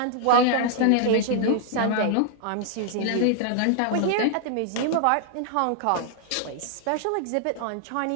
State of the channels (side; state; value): both; different; correlation 0.00